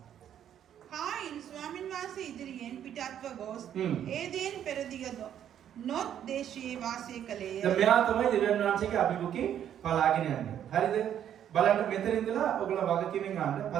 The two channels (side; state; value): left; quieter; 10.0 dB